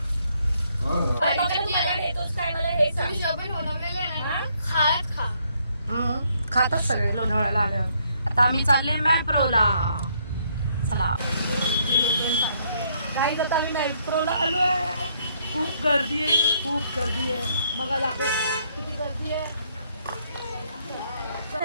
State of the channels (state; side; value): inverted; both; correlation -0.70